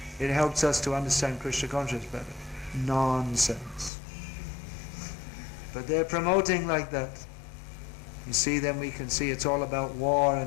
it helps us to understand Krishna consciousness better. Nonsense. But they're promoting like that. You see, then we can see it's all about war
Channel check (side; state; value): right; drops out; at 3.9 s